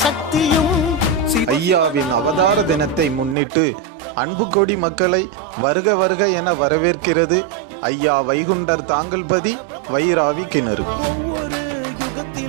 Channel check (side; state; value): left; drops out; at 3.4 s